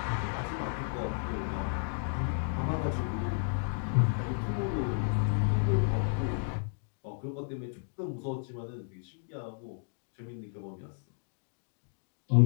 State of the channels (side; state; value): right; silent; digital silence